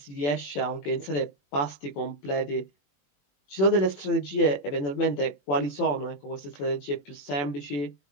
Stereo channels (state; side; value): late; right; 21 ms